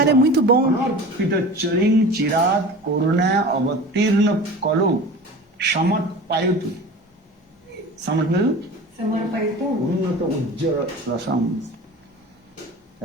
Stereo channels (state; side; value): normal; both; correlation 0.37